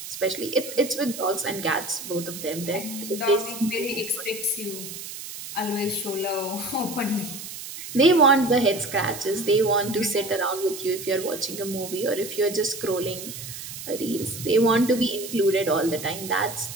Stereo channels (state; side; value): noise; right; hiss, 10 dB below the sound